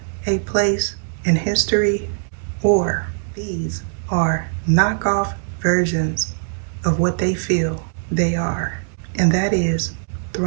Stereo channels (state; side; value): silent; left; digital silence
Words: a place in history, or these are knockoff versions of what they feel they are, and that is